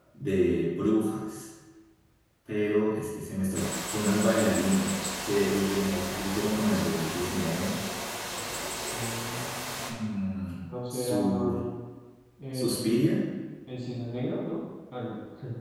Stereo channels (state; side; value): identical; both; correlation 1.00